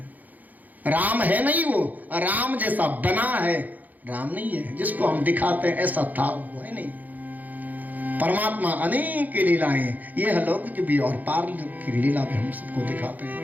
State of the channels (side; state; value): left; late; 0.082 ms